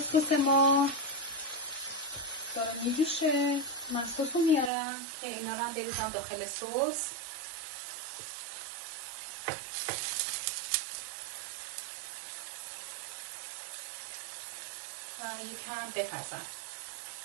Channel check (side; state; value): left; drops out; at 4.7 s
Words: سس ما داره میجوشه. من سس رو میارم که اینا رو هم بریزم داخل سس. و یکم بپزم.